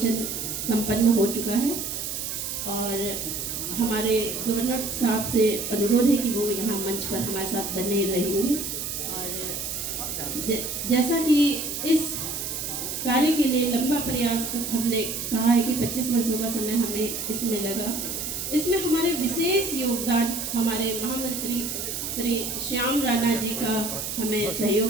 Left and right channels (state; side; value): noise; right; hiss, 4 dB below the sound